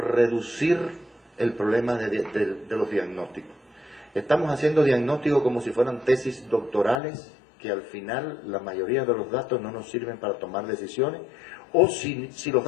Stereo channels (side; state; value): right; drops out; at 7.0 s